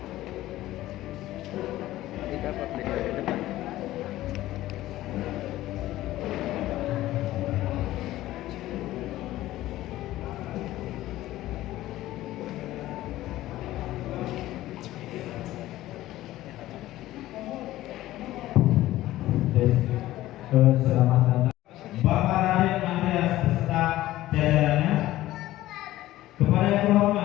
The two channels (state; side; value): quieter; right; 15.5 dB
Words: Dapat di depan. Selamat datang Bapak Raden Andreas beserta jajarannya. Kepada yang